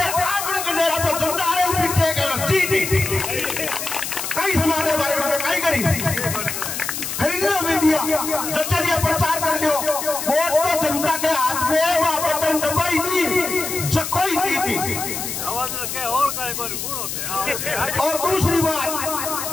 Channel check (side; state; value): left; noise; hiss, 5 dB below the sound